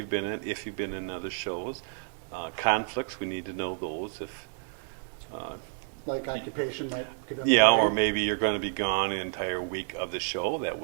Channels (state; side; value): silent; left; 58 dB below the other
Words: been in, if you've been in other shows. Conflicts, we need to know those. If Like occupation might get in the yeah, way. or maybe you're going to be gone the entire week of the show. That